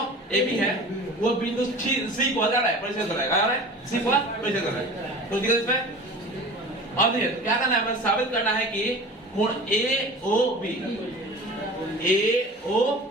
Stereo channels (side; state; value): both; normal; correlation 0.39